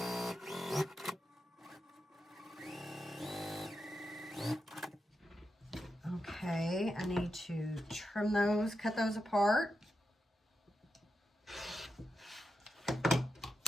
Okay, I need to trim those, cut those apart.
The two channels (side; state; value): both; normal; correlation 0.87